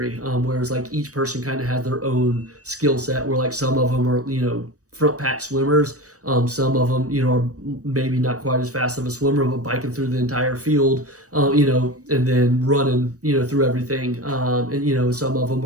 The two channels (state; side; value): late; left; 0.66 ms